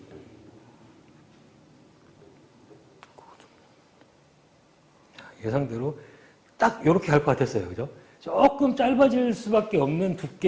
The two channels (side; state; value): both; identical; correlation 1.00